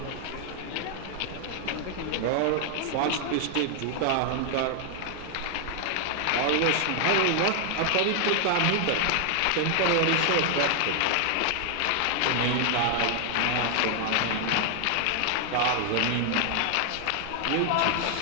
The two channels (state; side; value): different; both; correlation 0.00